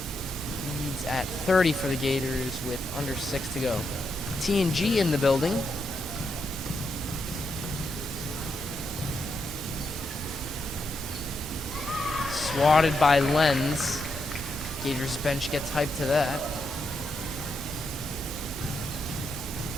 Leads at 30 for the Gators with under 6 to go. T&G in the building. Swatted by Lenz. Gators bench gets hyped to that.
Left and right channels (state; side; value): normal; both; correlation 0.82